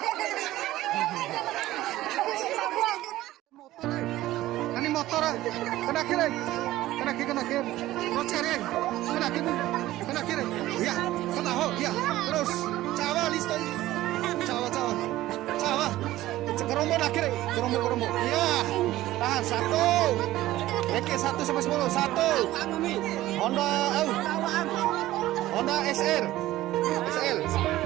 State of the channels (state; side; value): quieter; left; 15.7 dB